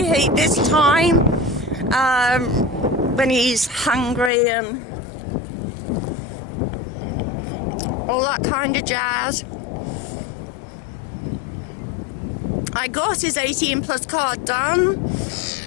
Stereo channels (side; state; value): right; drops out; at 4.3 s